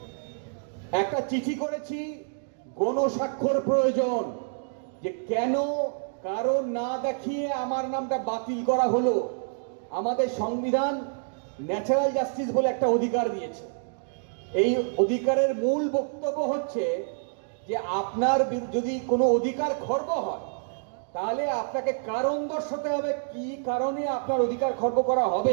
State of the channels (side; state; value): left; silent; digital silence